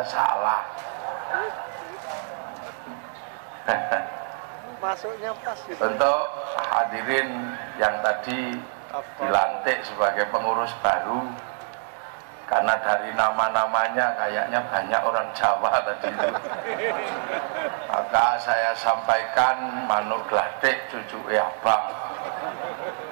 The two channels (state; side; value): silent; left; 59 dB below the other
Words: salah. Masuknya pas gitu. Untuk hadirin yang tadi dilantik sebagai pengurus baru, karena dari nama-namanya kayaknya banyak orang Jawa tadi itu, maka saya sampaikan Manuk Gladek cucu Abang